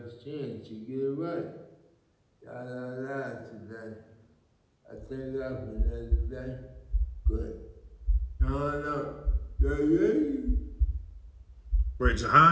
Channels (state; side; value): identical; both; correlation 1.00